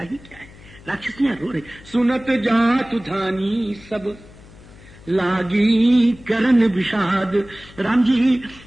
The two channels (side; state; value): left; noise; hum, 21 dB below the sound